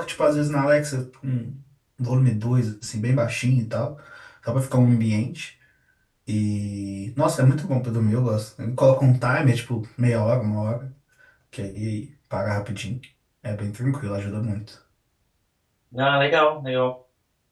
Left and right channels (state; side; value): identical; both; correlation 1.00